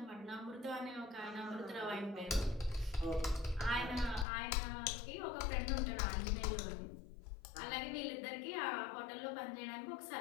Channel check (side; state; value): right; drops out; at 4.2 s